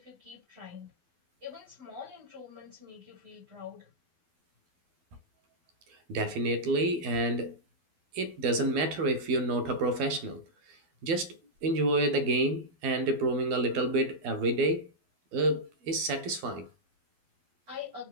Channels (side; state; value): left; late; 12 ms